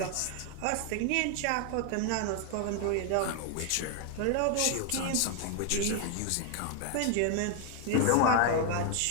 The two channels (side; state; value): both; different; correlation 0.01